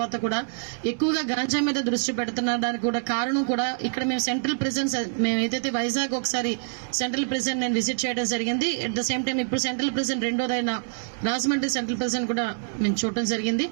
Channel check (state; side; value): silent; left; digital silence